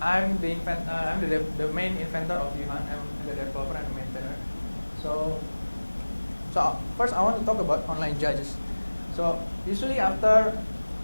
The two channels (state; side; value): inverted; both; correlation -1.00